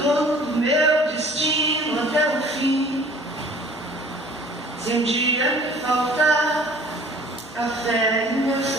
do meu destino até o fim. Se um dia me faltar a fé em meu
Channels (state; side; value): normal; both; correlation 0.51